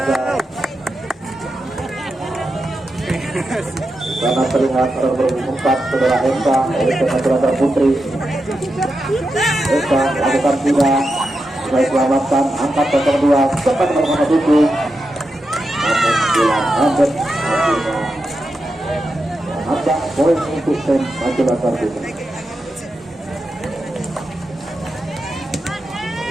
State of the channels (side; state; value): both; normal; correlation 0.88